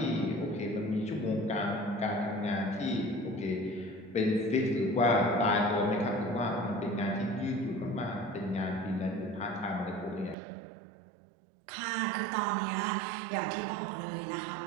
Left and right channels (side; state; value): left; drops out; at 10.4 s